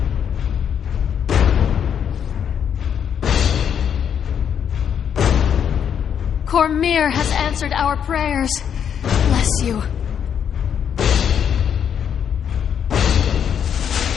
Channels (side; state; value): right; quieter; 8.3 dB